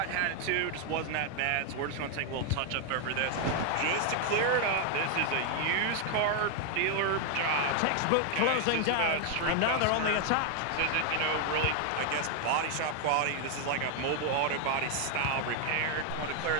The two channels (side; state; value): both; different; correlation 0.00